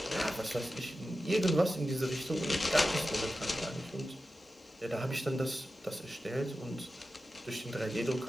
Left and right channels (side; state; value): both; normal; correlation 0.92